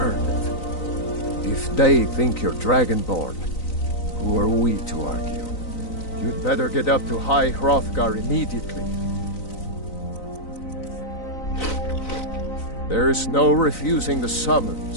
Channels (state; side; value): late; right; 3.9 ms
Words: it. If they think you're Dragonborn, who are we to argue? You'd better get up to High Hrothgar immediately. There's no refusing the